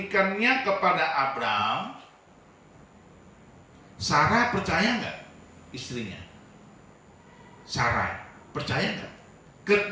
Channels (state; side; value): identical; both; correlation 1.00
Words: kepada Abraham, Sarah percaya nggak istrinya? Sarai percaya nggak?